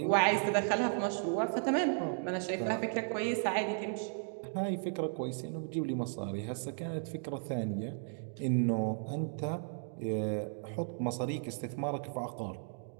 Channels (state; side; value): silent; left; digital silence